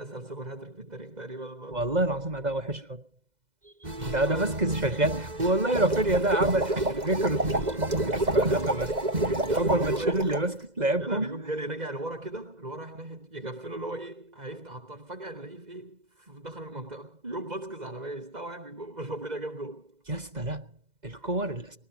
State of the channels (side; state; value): left; late; 2.0 ms